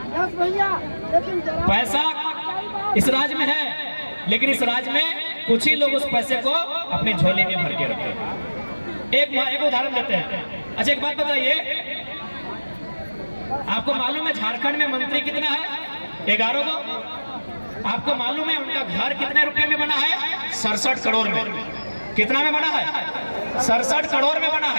पैसा इस राज्य में है, लेकिन इस राज्य में कुछ ही लोग उस पैसे को अपने झोले में भर के रखते हैं। एक उदाहरण देते हैं। अच्छा एक बात बताइए, आपको मालूम है झारखंड में मंत्री कितना है? 11 को। आपको मालूम है उनका घर कितने रुपए में बना है? 67 करोड़ में। कितना में बना है? 67 करोड़ में बना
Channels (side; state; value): both; inverted; correlation -1.00